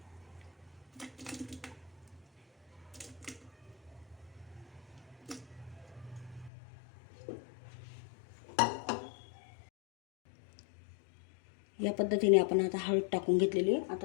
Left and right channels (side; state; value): right; drops out; at 6.5 s